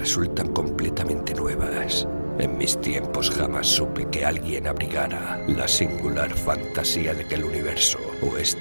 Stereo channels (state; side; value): inverted; both; correlation -1.00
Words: completamente nuevas. En mis tiempos jamás supe que alguien abrigara la singular fantasía de que el universo, o